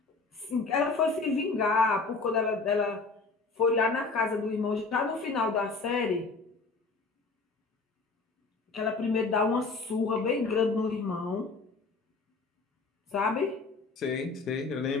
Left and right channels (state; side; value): quieter; right; 4.0 dB